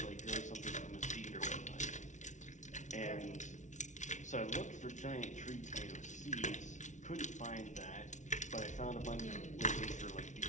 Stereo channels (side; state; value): right; late; 0.36 ms